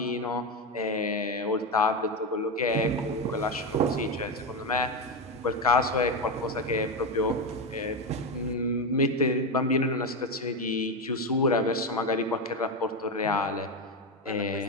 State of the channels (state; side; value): normal; both; correlation 0.13